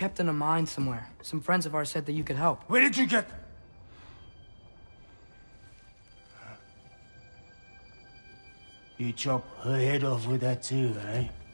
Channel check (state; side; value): inverted; both; correlation -1.00